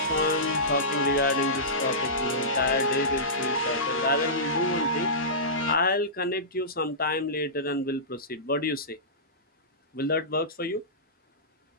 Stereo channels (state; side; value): normal; both; correlation -0.18